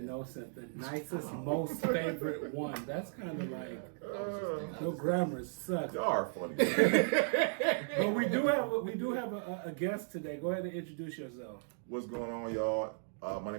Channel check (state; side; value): silent; left; digital silence